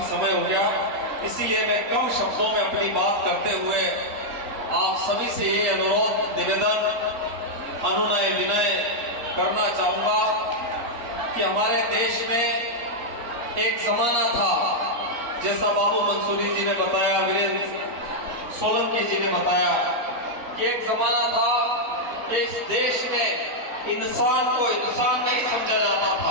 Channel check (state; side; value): late; left; 4.0 ms